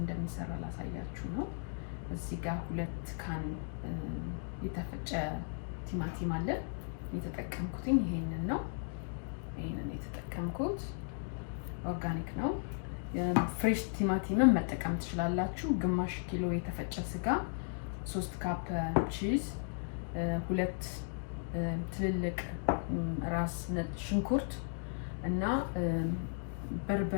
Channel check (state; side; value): silent; right; digital silence